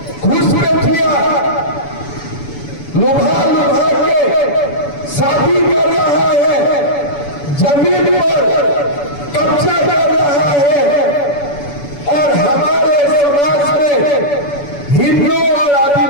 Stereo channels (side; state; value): right; late; 7.0 ms